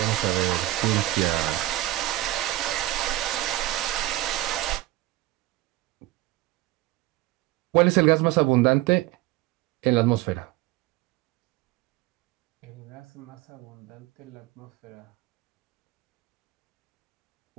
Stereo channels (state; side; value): quieter; left; 17.0 dB